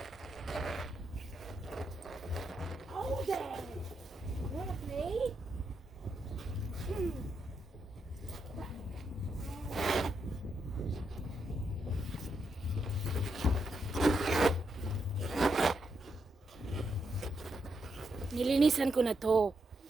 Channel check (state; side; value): normal; both; correlation 0.81